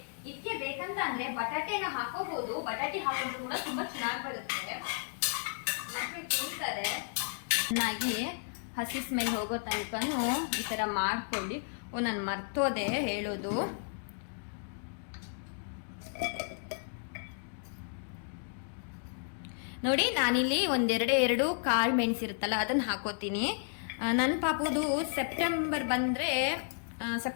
ಇದಕ್ಕೆ ಬೇಕಂತ ಅಂದ್ರೆ ಬಟಾಟೆನ ಹಾಕೋಬಹುದು, ಬಟಾಟೆ ಹಾಕೊಂಡ್ರು ಕೂಡ ತುಂಬಾ ಚೆನ್ನಾಗಿ ಬರುತ್ತೆ, ಮಕ್ಕಳು ತಿಂತಾರೆ. ಚೆನ್ನಾಗಿ ಹಸಿ ಸ್ಮೆಲ್ ಹೋಗೋ ತನಕನೂ ಈ ತರ ಮಾಡ್ಕೊಳ್ಳಿ. ನಾನು ಮರ್ತೋದೆ ಹೇಳೋದು. ನೋಡಿ, ನಾನಿಲ್ಲಿ ಒಂದೆರಡು ಕಾಳು ಮೆಣಸಿರುತ್ತಲ್ಲ ಅದನ್ನ ಹಾಕೋತೀನಿ. ನನ್ನ ಪಾಪುದು ಸೆಪ್ಟೆಂಬರ್ ಬಂದ್ರೆ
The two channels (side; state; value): right; silent; digital silence